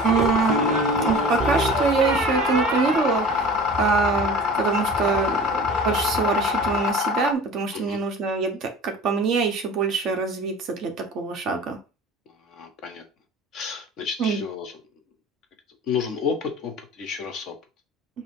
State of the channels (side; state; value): both; normal; correlation 0.40